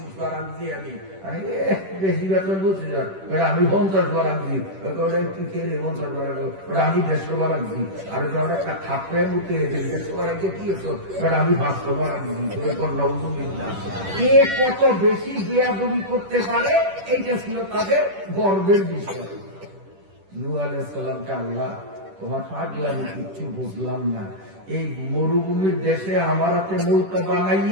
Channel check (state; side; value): late; left; 10 ms